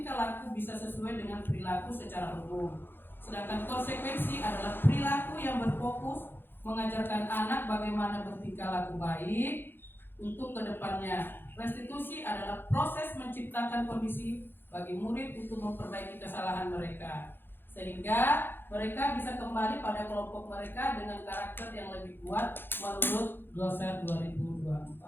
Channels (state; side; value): late; right; 0.10 ms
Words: laku bisa sesuai dengan perilaku secara umum. Sedangkan konsekuensi adalah perilaku yang berfokus mengajarkan anak bagaimana bertingkah laku baik untuk kedepannya. Restitusi adalah proses menciptakan kondisi bagi murid untuk memperbaiki kesalahan mereka, sehingga mereka bisa kembali pada kelompok mereka dengan karakter yang lebih kuat menurut Gloser